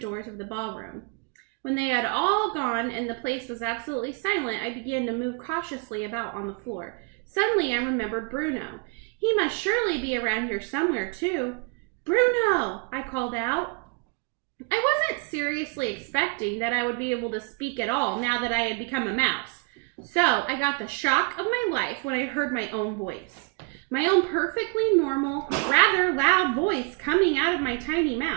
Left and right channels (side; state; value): left; quieter; 31.4 dB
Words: of the ballroom. When they had all gone and the place was absolutely silent, I began to move cautiously about on the floor. Suddenly I remembered Bruno. He must surely be around here somewhere, too. Bruno! I called out. I wasn't seriously expecting that I would be able to speak at all now that I had become a mouse. So I got the shock of my life when I heard my own voice. My own perfectly normal, rather loud voice coming out of my tiny